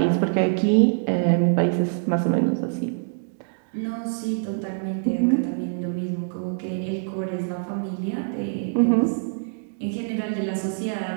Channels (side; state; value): left; silent; digital silence